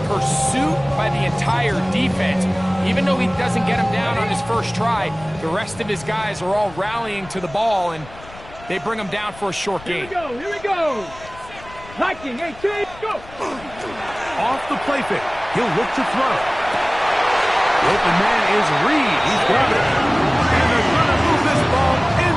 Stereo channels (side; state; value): left; noise; rumble, 19 dB below the sound